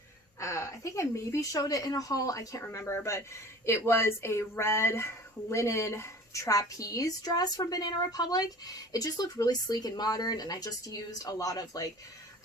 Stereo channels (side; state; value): both; normal; correlation 0.43